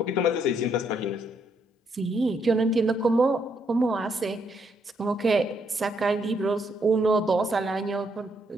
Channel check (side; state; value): both; normal; correlation 0.74